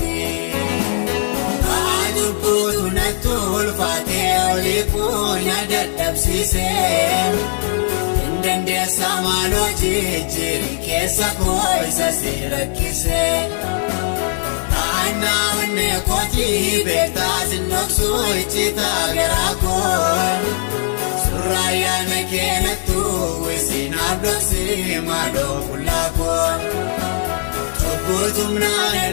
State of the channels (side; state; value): right; silent; digital silence